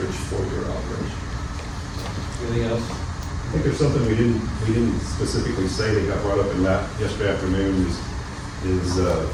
for your operation. Anything else? I think there's something we didn't specifically say that got brought up in yesterday afternoon that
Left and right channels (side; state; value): both; identical; correlation 1.00